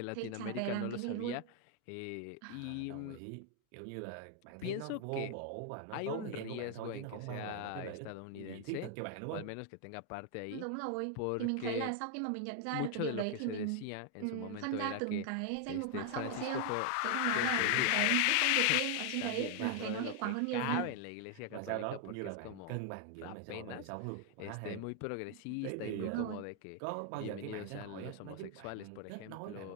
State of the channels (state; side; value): different; both; correlation 0.00